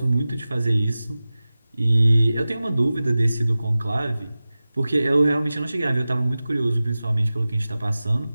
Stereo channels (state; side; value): inverted; both; correlation -0.96